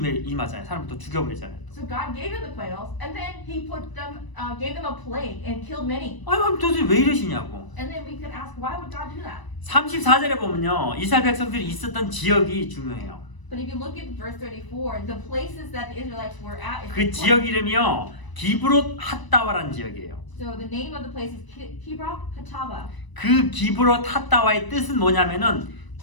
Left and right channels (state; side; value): late; right; 1.0 ms